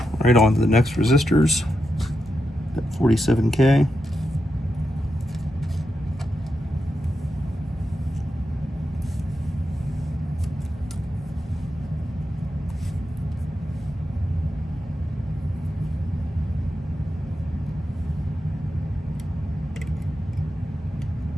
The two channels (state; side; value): normal; both; correlation 0.87